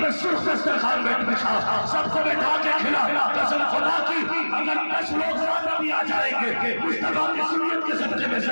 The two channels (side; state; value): both; inverted; correlation -1.00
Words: پہ سرخ دسترخوان بچھا, سب کو بیٹھا کے کھلا. قسم خدا کی اگر 10 لوگ زیادہ بھی آ جائیں گے, مصطفیٰ کی سنت کے صدقے میں